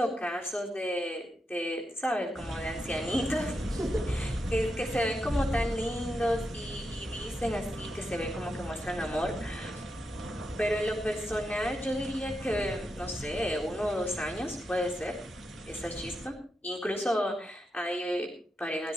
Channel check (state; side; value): normal; both; correlation 0.85